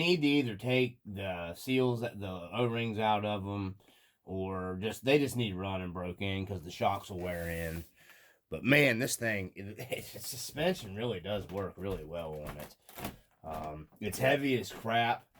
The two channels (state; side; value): identical; both; correlation 1.00